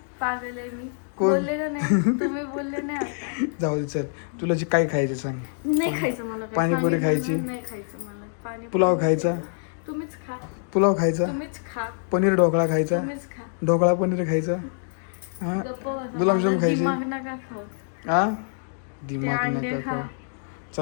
पागल आहे मी. कोण? बोलले का नाही तुम्ही? बोलले नाही आता. जाऊ दे चल, तुला जे काय खायचं सांग. नाही खायचं मला काय. पाणीपुरी खायची? नाही खायचं मला पाणी. पुलाव खायचा? तुम्हीच खा. पुलाव खायचा? तुम्हीच खा. पनीर ढोकळा खायचा? तुम्हीच खा. ढोकळा पनीर खायचा? हा गप्प बसा. गुलाबजाम माझा खायचे? दिमाग नका खाऊ. हा ते दिमाग अंडे नका खा. खाऊ.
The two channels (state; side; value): silent; right; digital silence